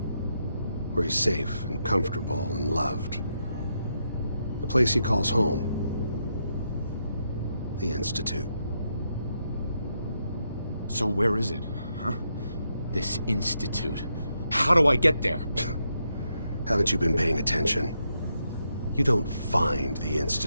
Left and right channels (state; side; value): inverted; both; correlation -0.81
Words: Where he's safe and comfortable and loved. The place he calls home. The Institute. So where is it, huh? This Institute. How do I get there? Haven't you been paying attention? You don't find the